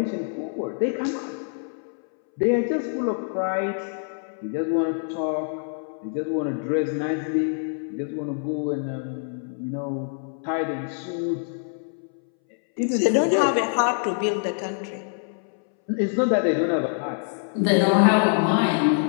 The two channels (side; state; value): right; silent; 61 dB below the other